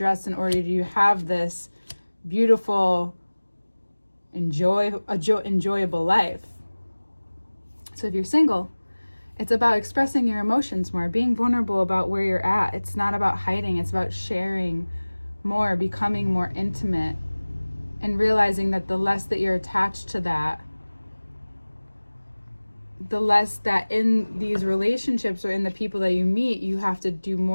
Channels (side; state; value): both; inverted; correlation -1.00